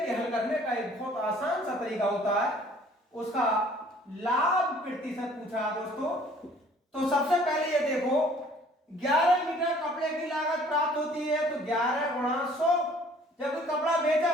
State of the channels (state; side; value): normal; both; correlation 0.55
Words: हल करने का एक बहुत आसान सा तरीका होता है। उसका लाभ प्रतिशत पूछा दोस्तों, तो सबसे पहले ये देखो 11 मीटर कपड़े की लागत प्राप्त होती है तो 11 गुणा 100, जब कपड़ा बेचा